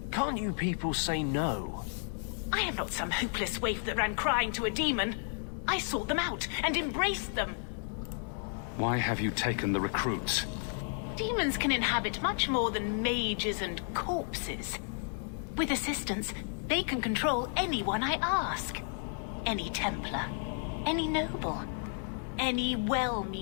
Can't you people say no? I am not some hopeless waif that ran crying to a demon. I sought them out and embraced them. Why have you taken the recruits? Demons can inhabit much more than mages and corpses. With assistance, they can control anyone I ask. Any Templar, any noble, any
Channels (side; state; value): right; silent; 56 dB below the other